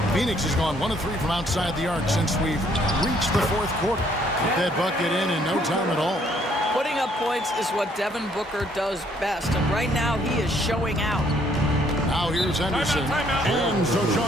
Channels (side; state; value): both; normal; correlation 0.65